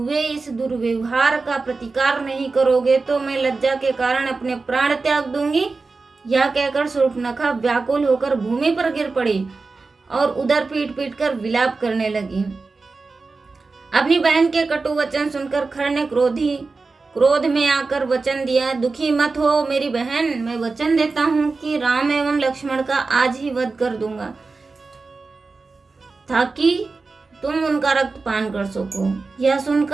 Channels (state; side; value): quieter; left; 4.0 dB